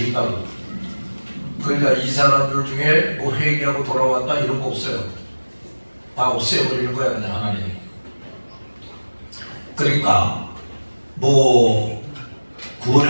그러니까 이 사람들 중에 뭐 회개하고 돌아왔다 이런 거 없어요. 다 없애버리는 거야 그냥 하나님이. 그러니까 뭐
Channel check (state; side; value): inverted; both; correlation -1.00